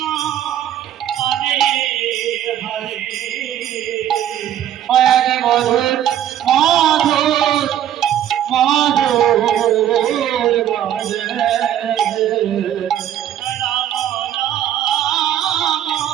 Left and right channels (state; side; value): quieter; left; 11.0 dB